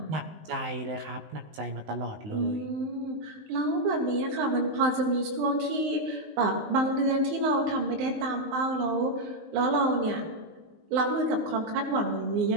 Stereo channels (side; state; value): left; late; 19 ms